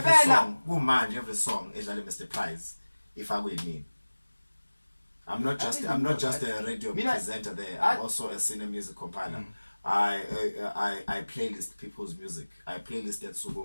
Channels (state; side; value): inverted; both; correlation -1.00